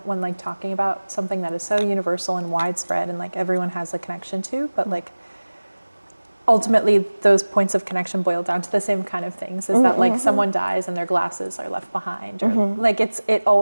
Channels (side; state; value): both; inverted; correlation -1.00